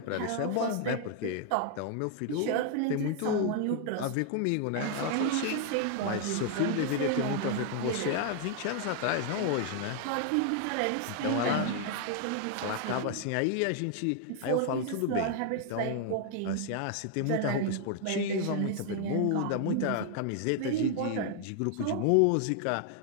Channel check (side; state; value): both; different; correlation 0.00